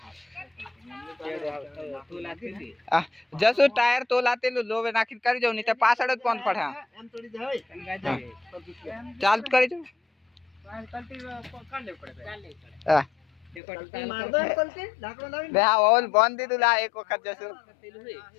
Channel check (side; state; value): right; drops out; at 13.6 s